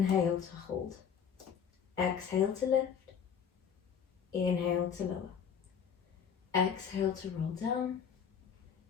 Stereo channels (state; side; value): quieter; right; 7.4 dB